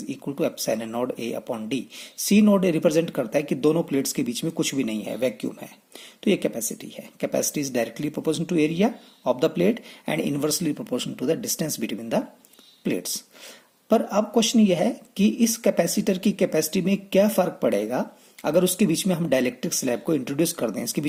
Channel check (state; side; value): identical; both; correlation 1.00